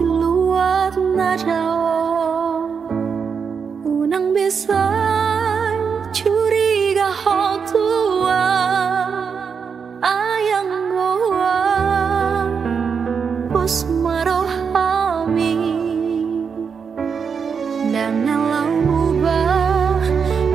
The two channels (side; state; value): left; quieter; 6.2 dB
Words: luar nada unang bisa curiga hal tua ayang goa bos marohami dan nalau ubah